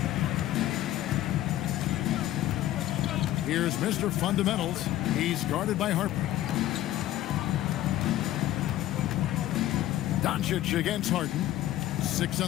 Here's Mr. Fundamentals. He's guarded by Harper. Doncic against Harden. 6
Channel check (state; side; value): quieter; right; 14.0 dB